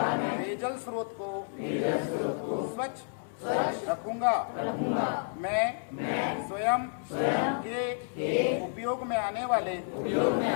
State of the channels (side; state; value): right; silent; 57 dB below the other